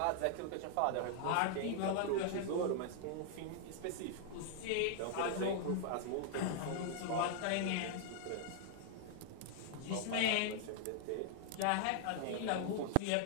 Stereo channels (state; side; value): different; both; correlation -0.01